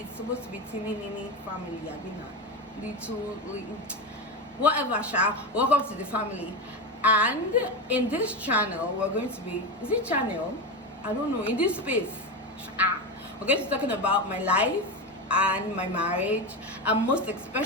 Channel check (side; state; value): both; normal; correlation 0.17